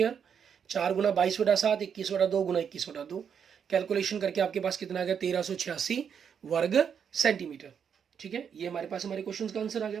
4 गुना 22/7, 21/2 गुना 21/2। कैलकुलेशन करके आपके पास कितना आ गया, 1386 वर्ग सेंटीमीटर। ठीक है, ये हमारे पास हमारे क्वेश्चन का आंसर आ गया।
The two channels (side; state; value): left; quieter; 7.5 dB